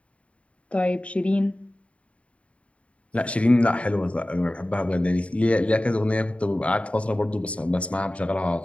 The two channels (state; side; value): late; right; 0.063 ms